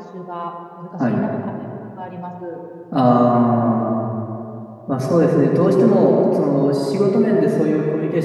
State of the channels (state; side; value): identical; both; correlation 1.00